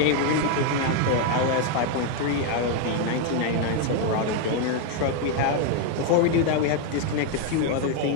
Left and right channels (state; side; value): different; both; correlation 0.00